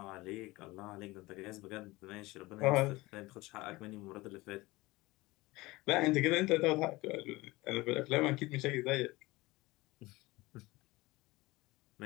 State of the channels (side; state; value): right; quieter; 20.9 dB